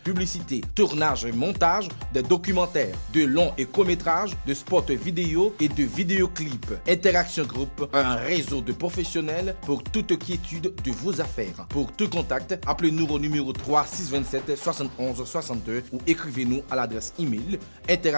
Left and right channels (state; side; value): inverted; both; correlation -1.00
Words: publicité, tournage et montage, des documentaires, de longs et courts-métrages, de spots vidéo et de vidéoclips. Interaction Group, un réseau de professionnels pour toute quiétude de vos affaires. Pour tout contact, appelez-nous au numéro 3 627 71 62 ou écrivez-nous à l'adresse email